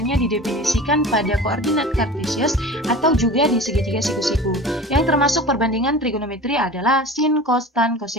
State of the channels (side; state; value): both; normal; correlation 0.37